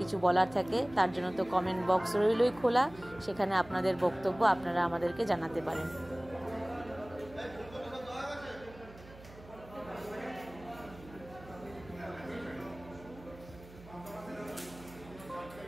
কিছু বলার থাকে, তার জন্য তো কমেন্ট বক্স রইলই খোলা, সেখানে আপনাদের বক্তব্য আপনারা আমাদেরকে জানাতে পারেন।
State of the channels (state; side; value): noise; right; hum, 19 dB below the sound